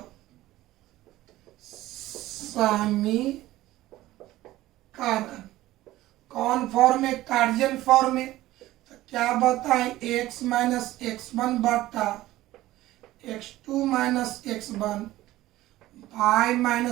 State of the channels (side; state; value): left; quieter; 16.1 dB